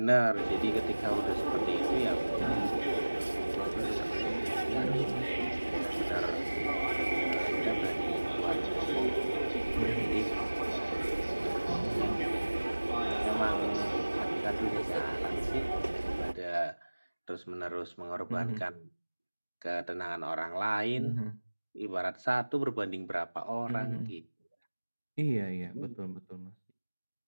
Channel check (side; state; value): both; inverted; correlation -1.00